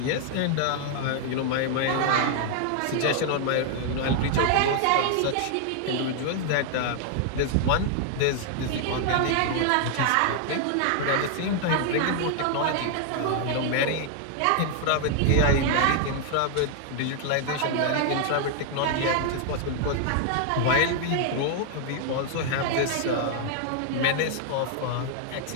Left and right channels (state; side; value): different; both; correlation 0.00